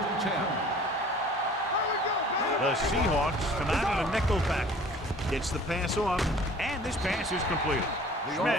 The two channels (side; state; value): both; normal; correlation 0.49